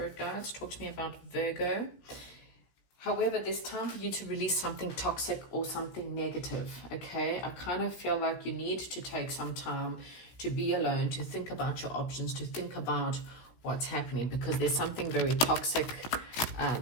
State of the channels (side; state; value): right; late; 16 ms